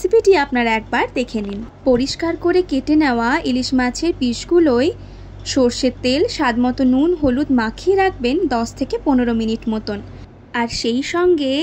আপনারা একবার দেখে নিন। পরিষ্কার করে কেটে নেওয়া ইলিশ মাছের পিসগুলোই সর্ষের তেল, স্বাদমতো নুন, হলুদ মাখিয়ে রাখবেন 10 থেকে 15 মিনিট মতন। আর সেই সঙ্গে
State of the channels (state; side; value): identical; both; correlation 1.00